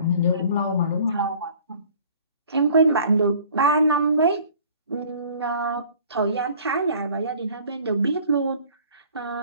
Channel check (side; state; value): both; inverted; correlation -0.51